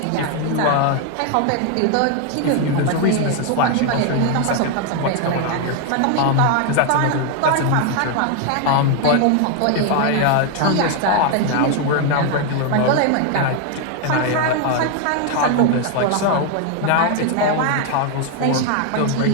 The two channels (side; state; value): both; different; correlation 0.01